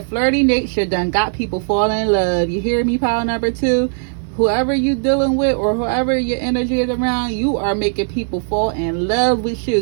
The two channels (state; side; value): silent; left; digital silence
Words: nature done got people falling in love. You hear me, pile number 2? Whoever you dealing with, or whoever your energy is around, you are making people fall in love with you.